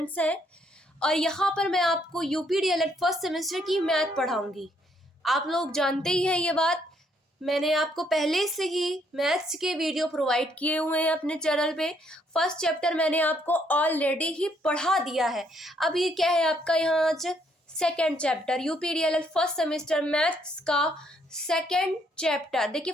हैं और यहाँ पर मैं आपको यूपीडीएलएड फर्स्ट सेमेस्टर की मैथ पढ़ाऊंगी। आप लोग जानते ही हैं ये बात, मैंने आपको पहले से ही मैथ्स के वीडियो प्रोवाइड किए हुए हैं अपने चैनल पे। फर्स्ट चैप्टर मैंने आपको ऑलरेडी ही पढ़ा दिया है। अब ये क्या है आपका यहाँ आज second chapter, UP DElEd first semester maths का सेकेंड चैप्टर। देखिए,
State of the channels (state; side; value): normal; both; correlation 0.70